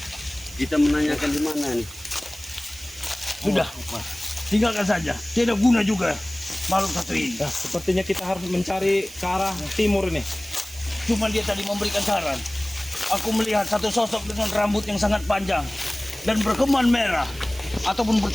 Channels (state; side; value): noise; right; hiss, 17 dB below the sound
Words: Kita menanyakan di mana nih? Sudah, tinggalkan saja. Tidak guna juga makhluk satu ini. Nah, sepertinya kita harus mencari ke arah timur ini. Cuma dia tadi memberikan saran. Aku melihat satu sosok dengan rambut yang sangat panjang dan berkeman merah ataupun